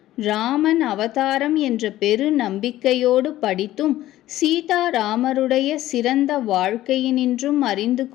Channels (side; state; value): right; quieter; 14.6 dB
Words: ராமன் அவதாரம் என்ற பெரு நம்பிக்கையோடு படித்தும் சீதாராமருடைய சிறந்த வாழ்க்கையினின்றும் அறிந்து